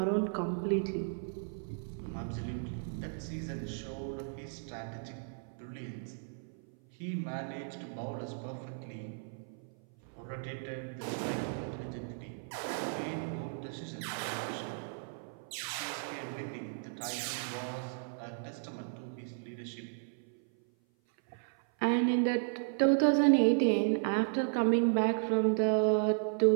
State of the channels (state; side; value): silent; left; 55 dB below the other